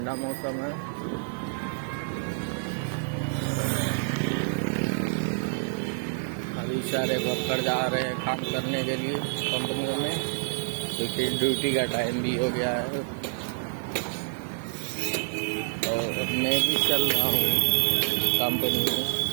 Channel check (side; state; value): left; silent; 60 dB below the other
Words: मौसम है। अभी सारे वर्कर जा रहे हैं काम करने के लिए कंपनियों में, क्योंकि ड्यूटी का टाइम भी हो गया है। और मैं भी चल रहा हूँ कंपनी में,